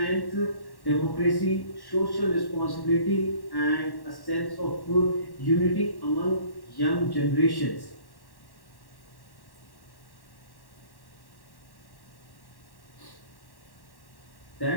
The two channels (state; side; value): late; right; 1.1 ms